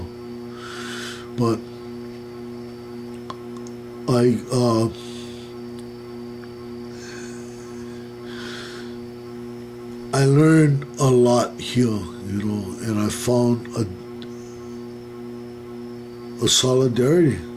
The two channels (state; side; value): identical; both; correlation 1.00